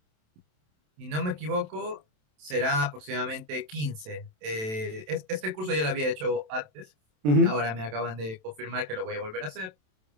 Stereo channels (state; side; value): late; left; 27 ms